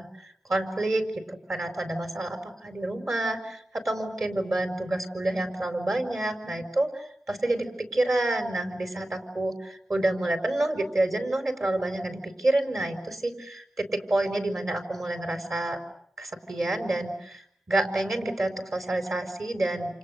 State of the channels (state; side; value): normal; both; correlation 0.94